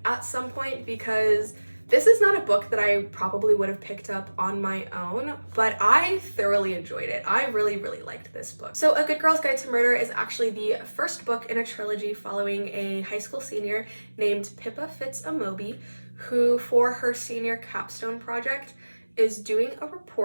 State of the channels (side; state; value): both; inverted; correlation -1.00